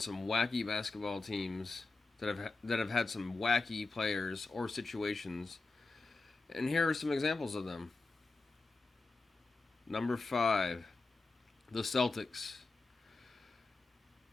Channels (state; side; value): quieter; right; 3.6 dB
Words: wacky basketball teams that have had some wacky players or situations, and here are some examples of them. Number 5, the Celtics.